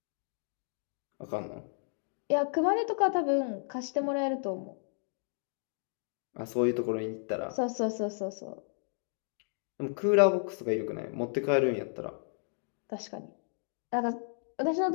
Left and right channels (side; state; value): right; silent; 56 dB below the other